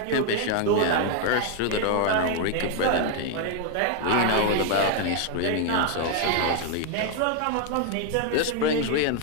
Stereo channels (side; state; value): both; different; correlation 0.01